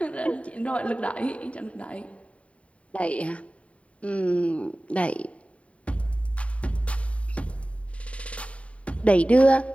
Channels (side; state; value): right; late; 0.064 ms